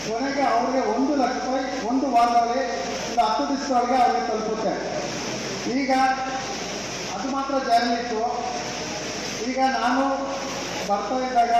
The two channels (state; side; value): noise; right; hum, 22 dB below the sound